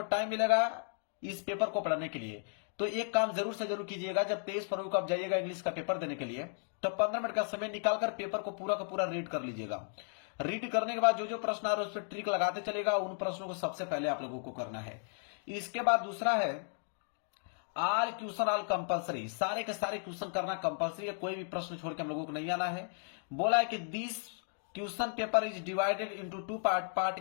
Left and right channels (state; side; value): silent; right; 55 dB below the other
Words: टाइम मिलेगा इस पेपर को पढ़ने के लिए। तो एक काम जरूर से जरूर कीजिएगा, जब 23 फरवरी को आप जाइएगा इंग्लिश का पेपर देने के लिए, तो 15 मिनट का समय निकालकर पेपर को पूरा का पूरा रीड कर लीजिएगा। रीड करने के बाद जो जो प्रश्न आ रहे हैं उस पर ट्रिक लगाते चलेगा। उन प्रश्नों को सबसे पहले आप लोगों को करना है। इसके बाद दूसरा है आल क्वेश्चन आल कंपलसरी, सारे के सारे क्वेश्चन करना कंपलसरी है, कोई भी प्रश्न छोड़ के हम लोगों को नहीं आना है। बोला है कि this question paper is divided into 2